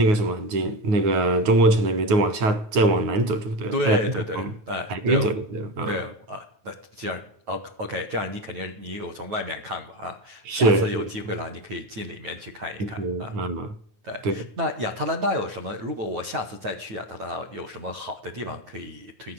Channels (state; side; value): late; left; 9.2 ms